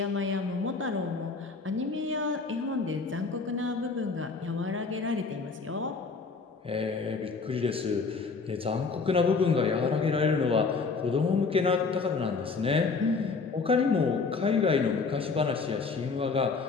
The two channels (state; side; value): quieter; right; 4.5 dB